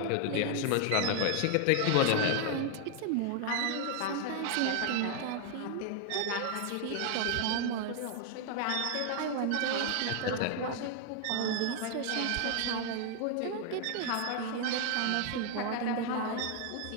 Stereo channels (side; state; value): both; different; correlation 0.00